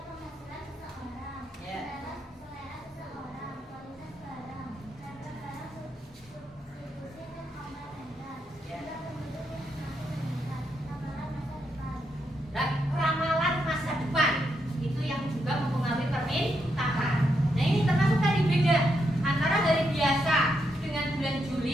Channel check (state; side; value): normal; both; correlation 0.81